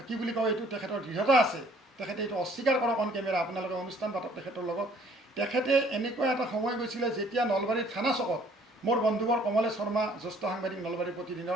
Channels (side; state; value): both; normal; correlation 0.59